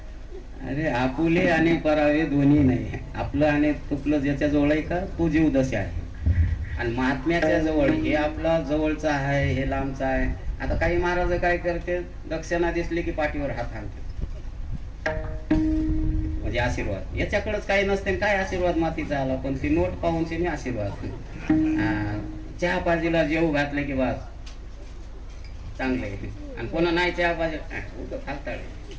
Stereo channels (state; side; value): identical; both; correlation 1.00